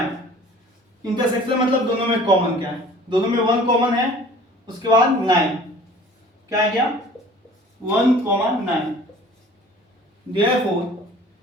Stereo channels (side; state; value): both; normal; correlation 0.48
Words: इंटरसेक्शन मतलब दोनों में कॉमन क्या है, दोनों में 1 कॉमन है, उसके बाद 9, क्या है क्या 1 9। देयरफॉर